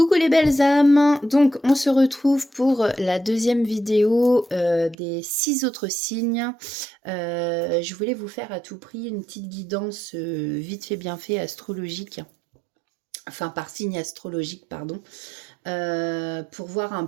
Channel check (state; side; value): drops out; left; at 5.0 s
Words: les belles âmes! Donc on se retrouve pour la deuxième vidéo, des 6 autres signes. Je voulais vous faire à tout prix une petite guidance, vite fait bien fait astrologique, enfin par signe astrologique pardon, pour voir un